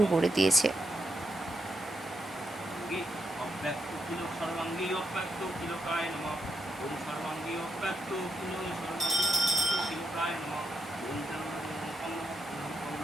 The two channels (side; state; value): both; normal; correlation 0.83